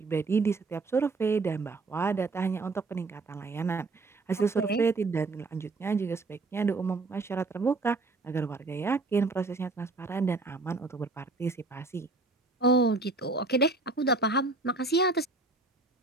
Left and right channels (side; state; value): left; quieter; 3.5 dB